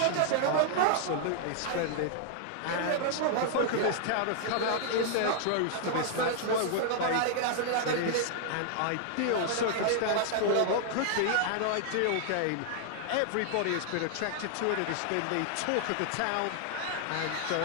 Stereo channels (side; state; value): both; different; correlation -0.01